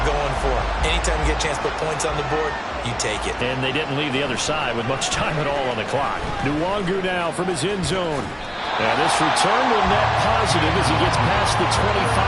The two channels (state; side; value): identical; both; correlation 1.00